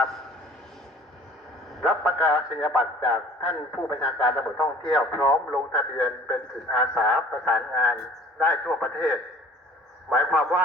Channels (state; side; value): normal; both; correlation 0.49